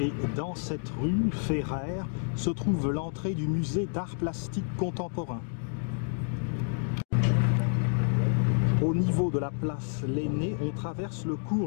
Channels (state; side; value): silent; right; digital silence